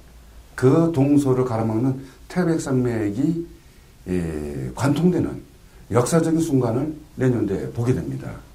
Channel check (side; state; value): both; identical; correlation 1.00